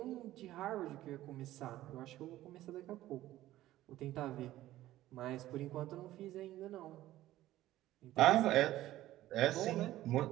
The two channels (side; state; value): left; quieter; 14.8 dB